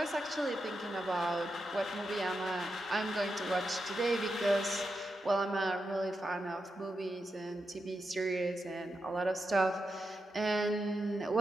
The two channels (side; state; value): both; normal; correlation 0.87